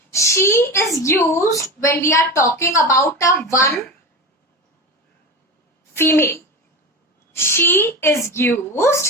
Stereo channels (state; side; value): normal; both; correlation 0.24